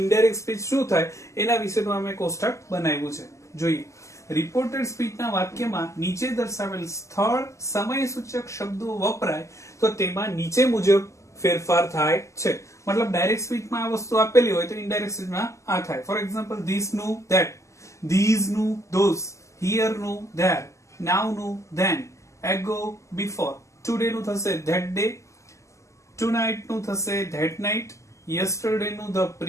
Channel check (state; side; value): late; right; 0.15 ms